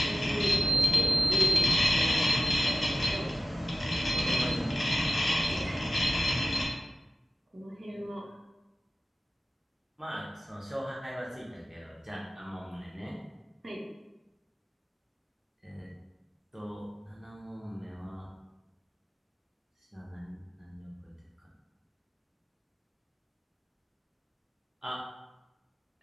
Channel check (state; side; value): normal; both; correlation 0.94